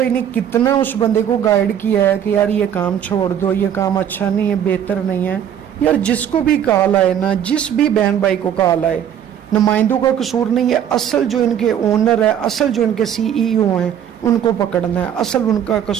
ने कितना उस बंदे को गाइड किया है कि यार ये काम छोड़ दो, ये काम अच्छा नहीं है, बेहतर नहीं है। यार जिसको भी कॉल आए ना, जिस भी बहन भाई को कॉल आए, नुमाइंदों का कसूर नहीं है, असल जो इनके ओनर है, असल जो इनके सीईओ हैं उनको पकड़ना है, असल उनका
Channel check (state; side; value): quieter; left; 9.5 dB